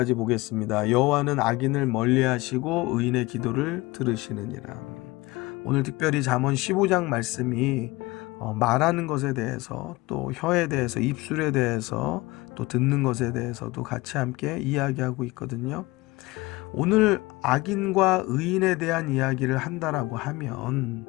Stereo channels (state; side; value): quieter; right; 21.6 dB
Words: 보겠습니다. 여호와는 악인을 멀리하시고 의인의 기도를 들으시느니라. 오늘 특별히 잠언 15장 말씀이 말하는 것에 대해서, 또 혀에 대해서, 입술에 대해서, 또 듣는 것에 대해서도 같이 함께 이야기하고 있거든요. 오늘 악인과 의인에 대한 이야기를 한다라고 하면